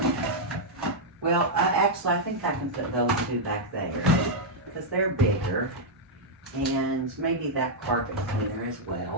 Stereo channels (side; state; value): both; normal; correlation -0.04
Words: Well, actually, I think I can put those two back there because they're bigger. And maybe that carpet cleaner as